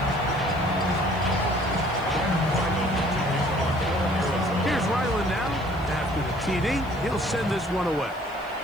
Here's Ryland now. After the TD, he'll send this one away.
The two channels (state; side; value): noise; left; hiss, 27 dB below the sound